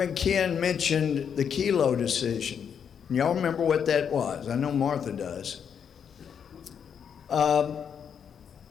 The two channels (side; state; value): right; quieter; 7.6 dB